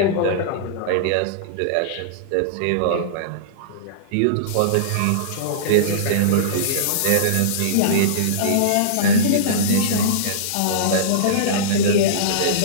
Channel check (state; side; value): different; both; correlation -0.03